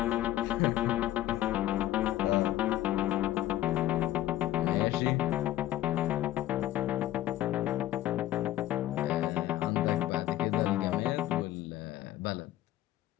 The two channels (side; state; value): right; quieter; 14.0 dB